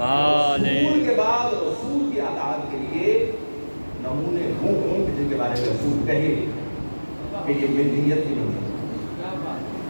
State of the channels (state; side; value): inverted; both; correlation -1.00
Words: کے بعد رسول کی اطاعت کے لیے نمونے ہوں جن کے بارے میں رسول کہے کہ یہ ملت کی منزل